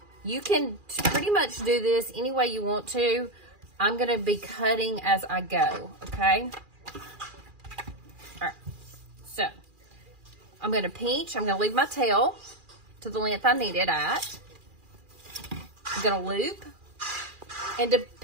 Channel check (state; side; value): late; left; 2.4 ms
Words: You can pretty much do this any way you want to. I'm going to be cutting as I go, okay? All right, so I'm going to pinch. I'm going to leave my tail to the length I need it at. I'm going to loop. And